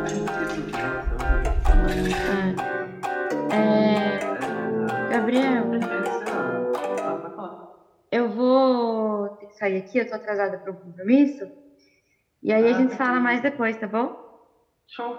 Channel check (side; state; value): both; identical; correlation 1.00